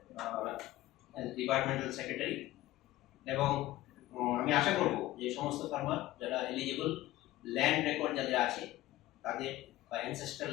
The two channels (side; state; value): right; quieter; 16.2 dB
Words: ডিপার্টমেন্টাল সেক্রেটারি, এবং আমি আশা করব যে সমস্ত ফার্মার যারা এলিজিবল, ল্যান্ড রেকর্ড যাদের আছে তাদের, বা অ্যানসেস্ট্রাল